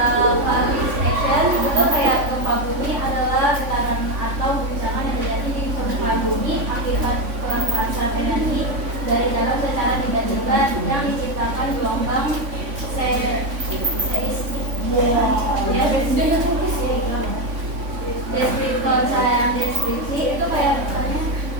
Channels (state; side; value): late; left; 3.5 ms